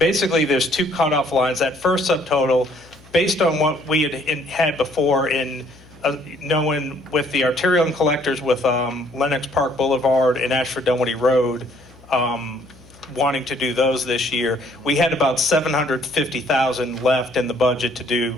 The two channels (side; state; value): left; noise; hum, 25 dB below the sound